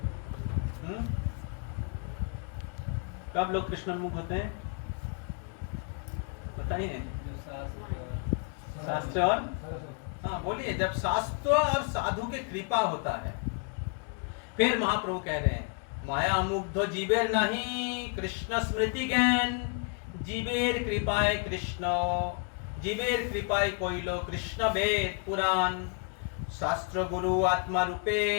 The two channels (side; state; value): right; quieter; 37.5 dB